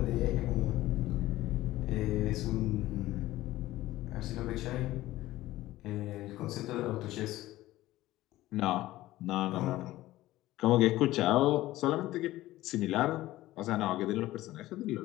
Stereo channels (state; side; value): quieter; right; 16.3 dB